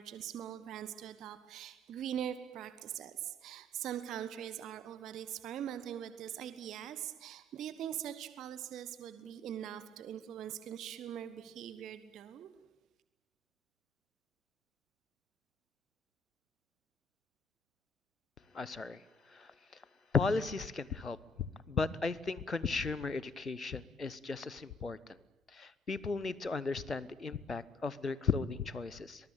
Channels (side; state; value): both; normal; correlation 0.61